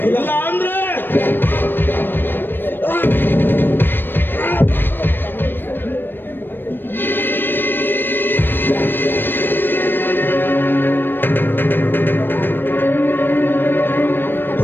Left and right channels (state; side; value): late; right; 0.096 ms